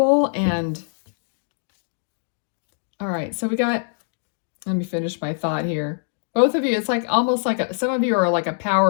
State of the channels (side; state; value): right; silent; 63 dB below the other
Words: and... All right, so we got... Let me finish my thought here. Both of you, it's like almost like some of you are like a